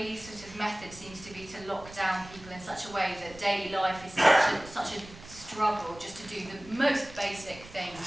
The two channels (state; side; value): noise; right; rumble, 18 dB below the sound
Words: sort of method seems to be to lock down people in such a way that daily life is such a struggle just to do the most basic